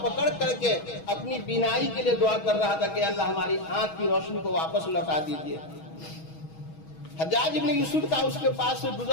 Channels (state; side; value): late; right; 6.2 ms